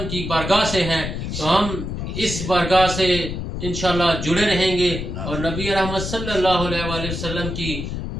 کی بارگاہ سے ہیں، تو ہم اس بارگاہ سے انشاءاللہ جڑے رہیں گے، اور نبی رحمت صلی اللہ علیہ وآلہ وسلم کی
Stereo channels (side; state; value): left; noise; rumble, 5 dB below the sound